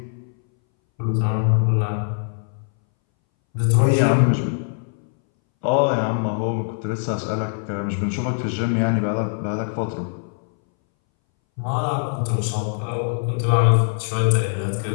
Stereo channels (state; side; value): silent; right; 62 dB below the other